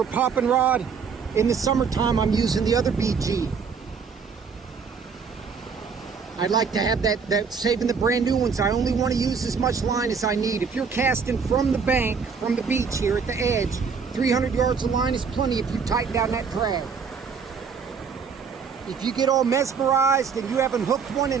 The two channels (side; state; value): left; quieter; 5.8 dB